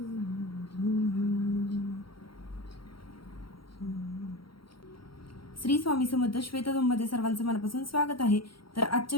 स्वामी समर्थ श्वेतधूममध्ये सर्वांचं मनापासून स्वागत आहे. तर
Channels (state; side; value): late; right; 0.74 ms